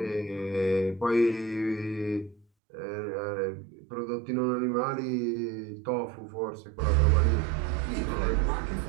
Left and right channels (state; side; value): drops out; left; at 2.5 s